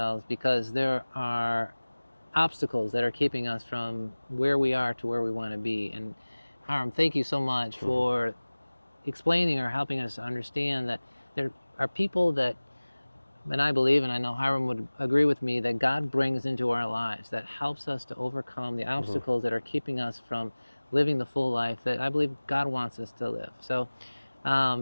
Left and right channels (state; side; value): inverted; both; correlation -1.00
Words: because there are obstacles that are keeping us from where we are to where we want to be. And Hiram, thank you so much for explaining or helping us to understand that there are people that, and I believe, and I know Hiram would agree with me, that God brings into our lives that helps us to overcome the obstacles that are keeping us from living the full life that I believe God wants us to live. So